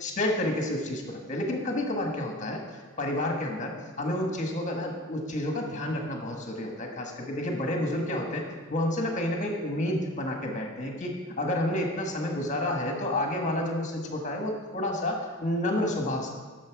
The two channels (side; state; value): both; normal; correlation 0.37